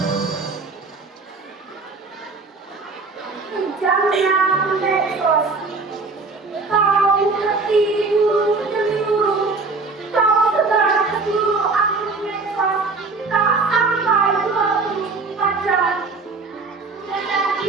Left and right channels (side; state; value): left; quieter; 4.0 dB